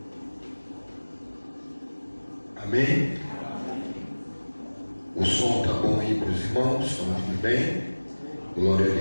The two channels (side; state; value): both; inverted; correlation -1.00